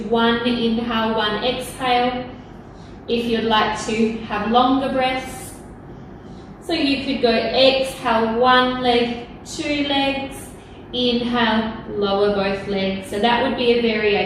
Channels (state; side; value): identical; both; correlation 1.00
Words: 1 inhale, 1 exhale. If you'd like to have longer breaths. So you could go exhale 1 leg, 2 legs, inhale, lower both legs. So that would be a